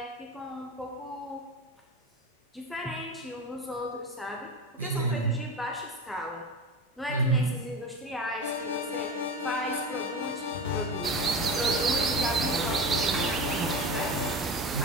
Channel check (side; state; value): both; normal; correlation 0.27